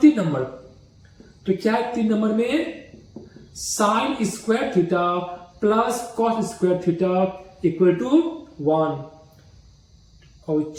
3 नंबर, तो क्या है 3 नंबर में? Sine square theta plus cos square theta equal to 1। और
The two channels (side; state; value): both; identical; correlation 1.00